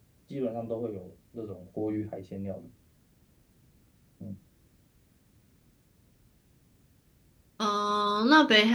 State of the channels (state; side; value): identical; both; correlation 1.00